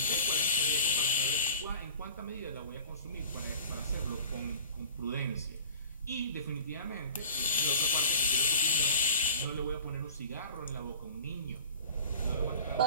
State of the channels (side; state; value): both; inverted; correlation -0.42